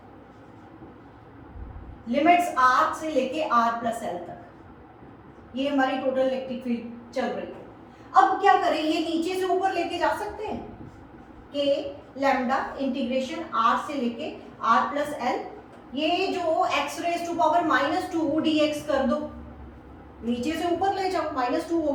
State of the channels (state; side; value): identical; both; correlation 1.00